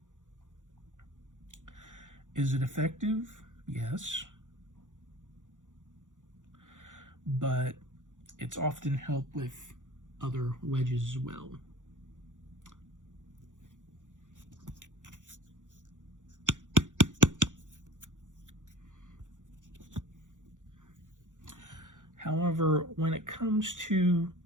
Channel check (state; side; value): late; left; 0.86 ms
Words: Is it effective? Yes. But it's often helped with other wedges as well. However, when it comes to